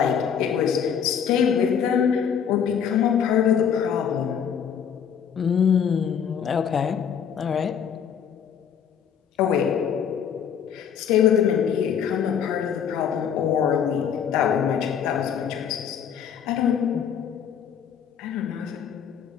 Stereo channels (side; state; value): right; quieter; 7.9 dB